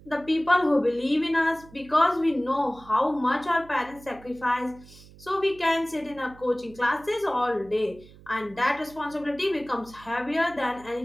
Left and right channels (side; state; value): right; noise; hum, 22 dB below the sound